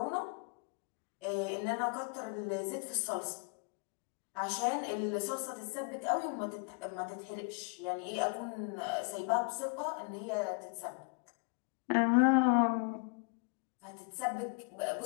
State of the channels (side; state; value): right; quieter; 37.5 dB